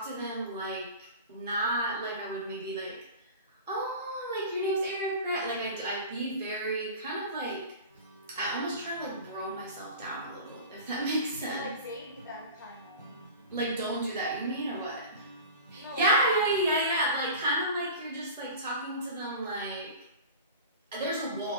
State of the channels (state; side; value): inverted; both; correlation -0.35